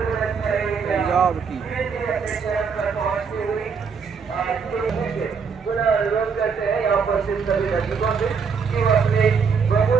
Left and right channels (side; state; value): left; quieter; 5.9 dB